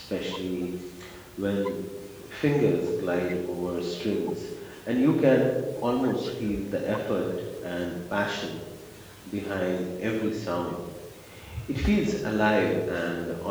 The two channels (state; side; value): identical; both; correlation 1.00